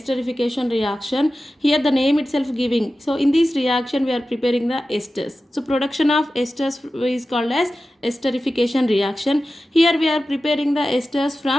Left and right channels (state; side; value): normal; both; correlation 0.94